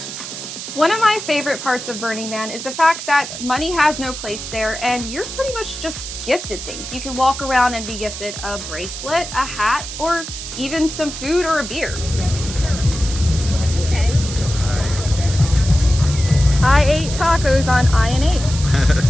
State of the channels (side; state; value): right; noise; hiss, 9 dB below the sound